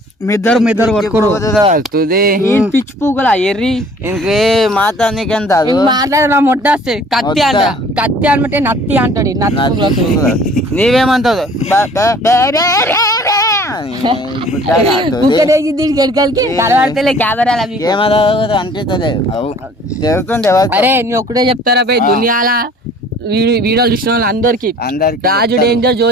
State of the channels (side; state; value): both; normal; correlation 0.52